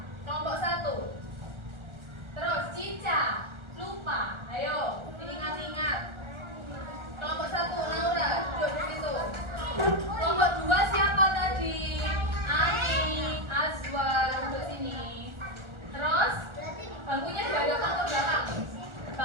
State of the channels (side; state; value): left; late; 1.4 ms